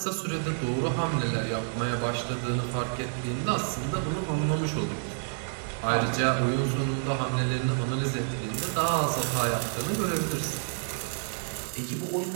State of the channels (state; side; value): silent; left; digital silence